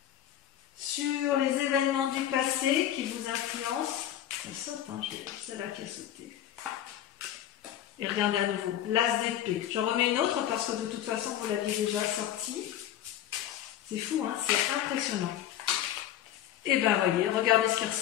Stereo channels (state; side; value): quieter; right; 11.5 dB